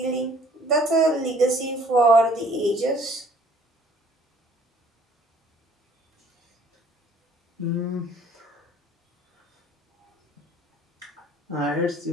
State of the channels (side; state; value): both; normal; correlation 0.57